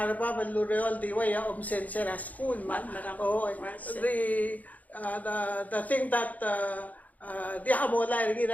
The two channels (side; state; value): right; late; 0.076 ms